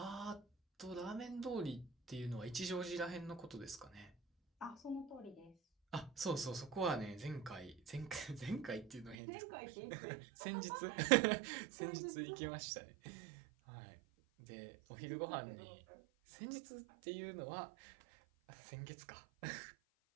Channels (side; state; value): left; drops out; at 9.2 s